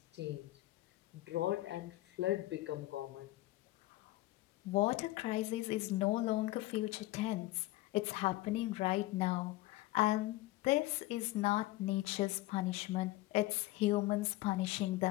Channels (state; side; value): quieter; right; 18.1 dB